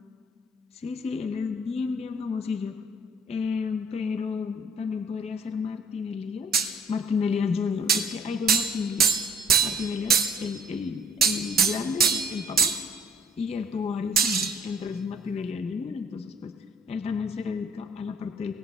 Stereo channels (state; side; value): normal; both; correlation 0.55